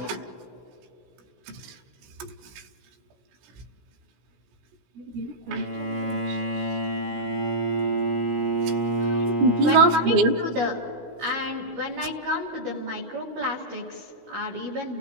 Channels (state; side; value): late; left; 16 ms